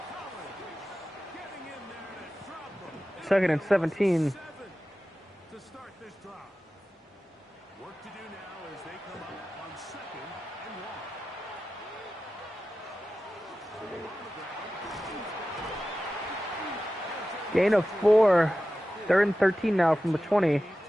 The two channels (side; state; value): both; normal; correlation 0.94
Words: Collins getting in there to drop them. Second and 17. 7 to start this drive. Work to do now as they come up on second and 1. Gain of 4. 3rd and 13 now from the 20. To